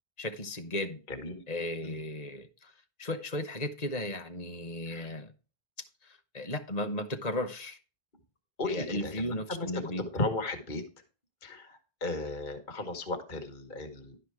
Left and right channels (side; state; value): right; late; 1.9 ms